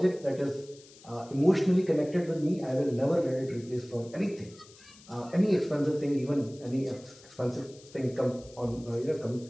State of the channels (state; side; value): noise; left; hiss, 23 dB below the sound